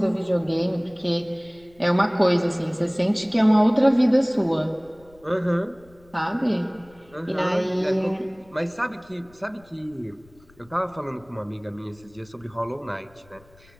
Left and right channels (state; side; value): noise; left; rumble, 28 dB below the sound